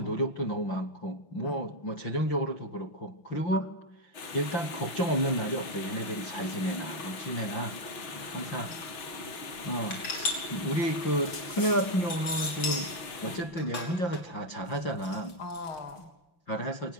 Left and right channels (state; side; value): late; right; 5.9 ms